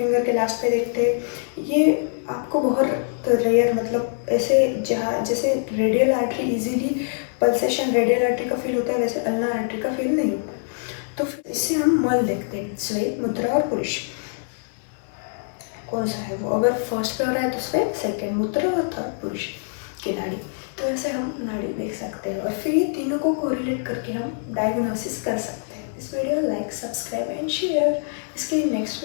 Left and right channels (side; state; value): right; silent; 63 dB below the other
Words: के लास्ट पे देखते हैं। ये आपको बहुत रेयर, मतलब ऐसे जहाँ जैसे radial artery easily pulsation radial artery का फील होता है, वैसे अल्ना आर्टरी का फील नहीं होता। तो फिर इससे हम मल देखते हैं, स्वेद, मुद्रा और पुरुष कौन सा है वो। अगर फर्स्ट पे हो रहा है तो स्वेद, सेकेंड मुद्रा और थर्ड पुरुष की नाड़ी। तो ऐसे हम नाड़ी देख सकते हैं और फिर ये तीनों को कोरिलेट करके हम डायग्नोसिस कर सकते हैं। इस video like, subscribe and share. इसके नेक्स्ट